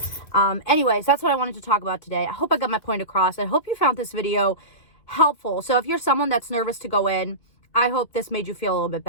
Anyways, that's what I wanted to talk about today. I hope I got my point across. I hope you found this video helpful. So if you're someone that's nervous to go in, I hope this made you feel a little bit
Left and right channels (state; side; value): late; right; 2.6 ms